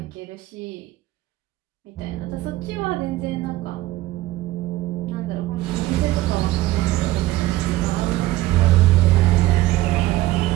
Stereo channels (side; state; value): left; quieter; 16.7 dB